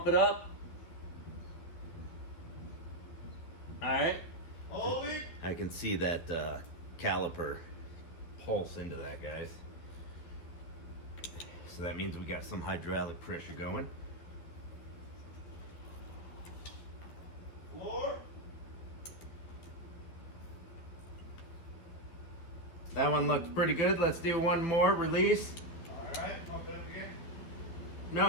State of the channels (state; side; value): late; right; 12 ms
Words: it up. All right. Holding. I can see that caliper pulse into that, guys. So that means we got some hydraulic pressure going. Floor. That one looks pretty good. Let's do one more. Release. All right. Pump it up again.